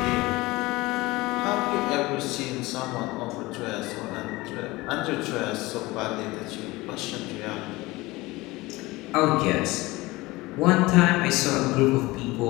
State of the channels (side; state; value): right; quieter; 20.9 dB